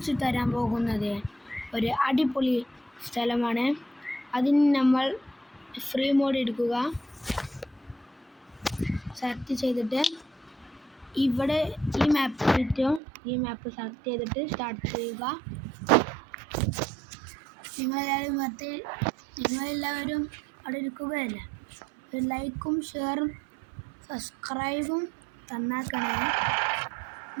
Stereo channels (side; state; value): left; drops out; at 13.0 s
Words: തരാൻ പോകുന്നത് ഒരു അടിപൊളി സ്ഥലമാണ്. അതിന് നമ്മൾ ഫ്രീ മോഡ് എടുക്കുക, സെലക്ട് ചെയ്തിട്ട് ഇവിടെ ഈ മാപ്പ് കിട്ടും. ഈ മാപ്പ് സെലക്ട് ചെയ്തിട്ട് സ്റ്റാർട്ട് ചെയ്യുക. നിങ്ങളെല്ലാവരും അവിടെ ഇരിക്കുകയല്ലേ, ഒരു ലൈക്കും ഷെയറും സബ്സ്ക്രൈബും തന്നാക്കണേ.